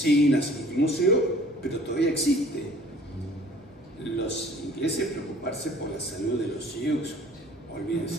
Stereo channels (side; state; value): both; normal; correlation 0.52